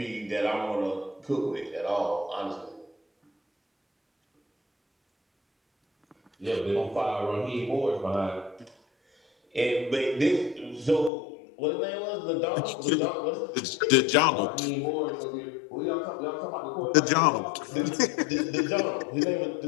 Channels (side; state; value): right; drops out; at 11.1 s